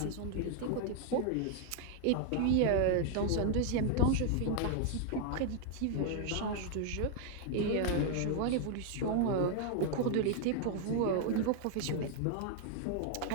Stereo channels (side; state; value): both; different; correlation 0.00